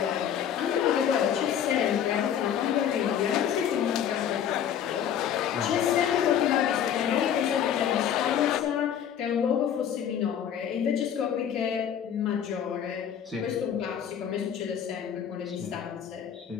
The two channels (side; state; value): right; quieter; 9.0 dB